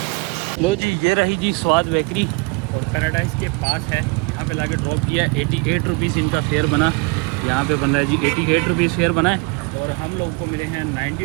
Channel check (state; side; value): quieter; left; 28.0 dB